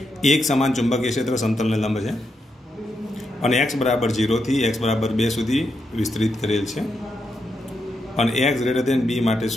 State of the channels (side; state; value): both; normal; correlation 0.83